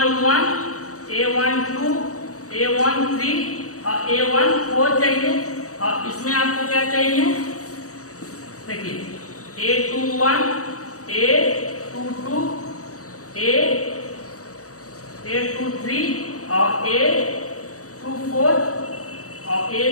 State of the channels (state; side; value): late; right; 0.66 ms